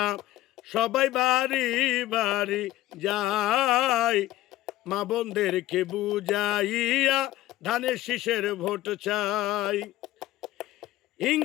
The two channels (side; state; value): right; quieter; 15.8 dB